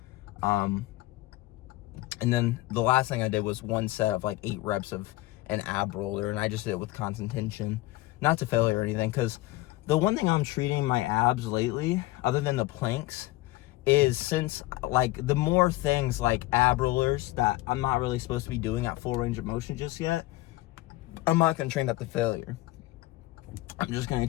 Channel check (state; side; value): quieter; right; 18.5 dB